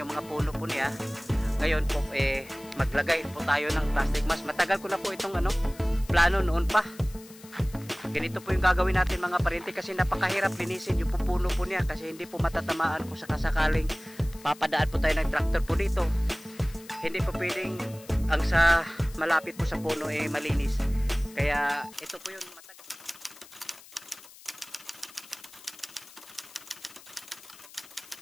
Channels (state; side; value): noise; left; hiss, 21 dB below the sound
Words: mga puno po niya. Ngayon po maglagay po tayo ng plastic mask. Matagal ko na po itong plano noon pa. Ganito po yung gagawin natin mga paryente kasi napakahirap linisin yung pupuno po niya kasi hindi po matatamaan kung sakasakaling papadaan po tayo ng tractor po dito. Hindi po pwedeng ang sa malapit po sa puno malinis. Kaya ito po yung matagal.